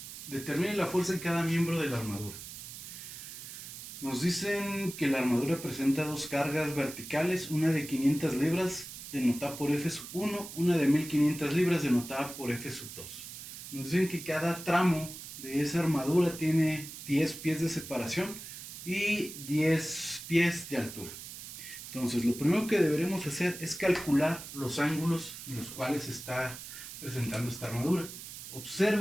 determine la fuerza en cada miembro de la armadura. Nos dicen que la armadura presenta dos cargas verticales, una de 500 libras denotada por F1, una de 1500 libras denotada por F2. Nos dicen que cada tramo de esa armadura tiene 10 pies de separación y 10 pies de altura. Entonces, lo primero que deberemos hacer es calcular los ángulos en los cuales se está presentando esta armadura.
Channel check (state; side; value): noise; right; hiss, 11 dB below the sound